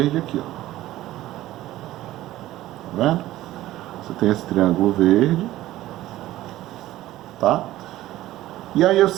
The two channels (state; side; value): quieter; left; 15.3 dB